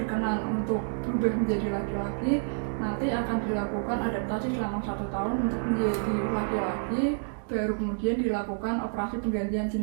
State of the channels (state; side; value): silent; left; digital silence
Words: untuk berubah menjadi laki-laki, nanti akan dilakukan adaptasi selama 1 tahun untuk menjadi laki-laki, baru kemudian dilakukan operasi penggantian